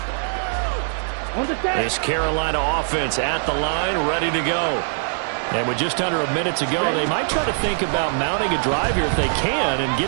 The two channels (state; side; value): silent; left; 61 dB below the other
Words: This Carolina offense at the line, ready to go. And with just under a minute to go, they might try to think about mounting a drive here if they can and get